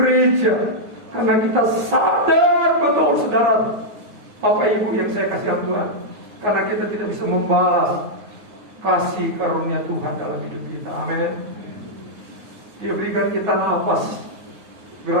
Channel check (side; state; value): left; late; 9.5 ms